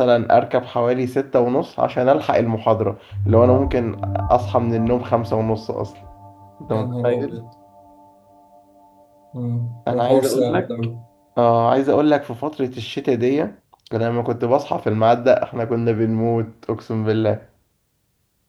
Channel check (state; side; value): identical; both; correlation 1.00